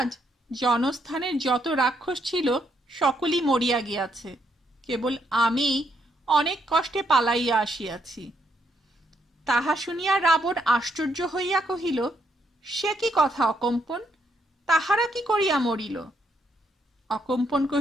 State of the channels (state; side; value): normal; both; correlation 0.75